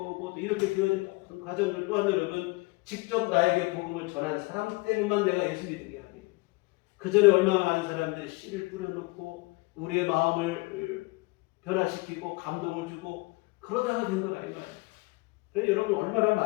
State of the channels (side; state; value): right; quieter; 25.2 dB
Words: 또 이렇게 되어진 모든 과정들 또한 여러분 직접 나에게 복음을 전한 사람 때문만 내가 예수 믿은 게 아니에요. 그 전에 얼마나 많은 사람들이 씨를 뿌려놓고 우리의 마음을 변화시키고 감동을 주고 그러다가 된 거라 이 말이에요. 그래서 여러분 얼마나